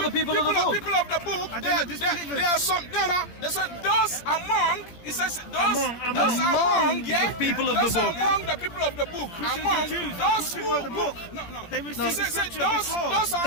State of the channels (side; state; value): right; late; 17 ms